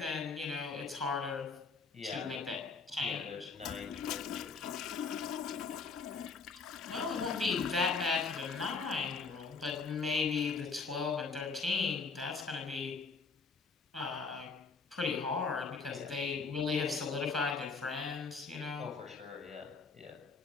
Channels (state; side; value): quieter; right; 4.7 dB